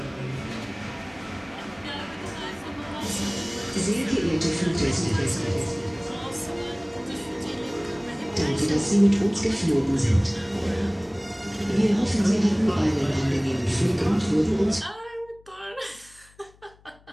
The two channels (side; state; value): left; noise; hum, 28 dB below the sound